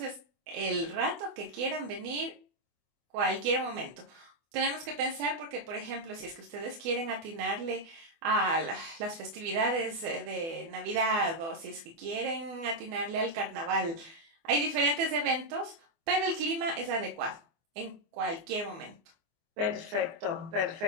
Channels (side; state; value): left; late; 24 ms